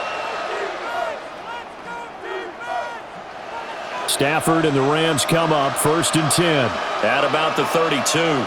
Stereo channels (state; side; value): identical; both; correlation 1.00